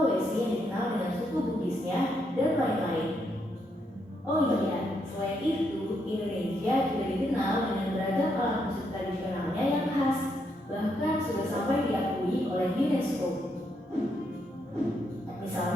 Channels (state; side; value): normal; both; correlation 0.78